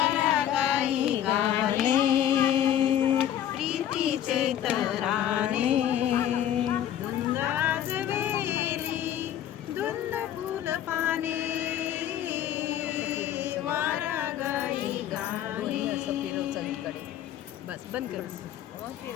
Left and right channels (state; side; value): quieter; right; 10.9 dB